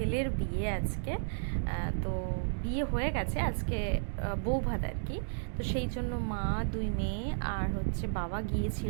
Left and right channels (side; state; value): left; silent; digital silence